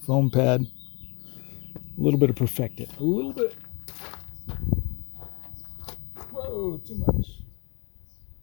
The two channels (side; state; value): right; quieter; 30.0 dB